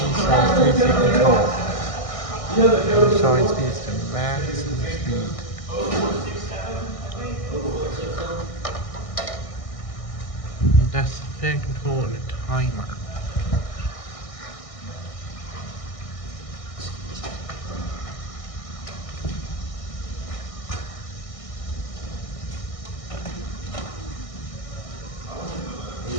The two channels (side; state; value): right; late; 1.6 ms